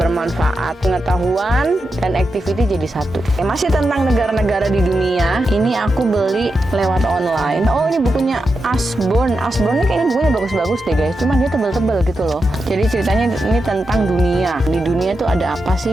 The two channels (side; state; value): both; normal; correlation 0.88